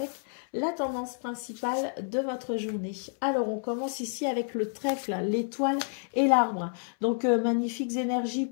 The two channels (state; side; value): silent; right; 58 dB below the other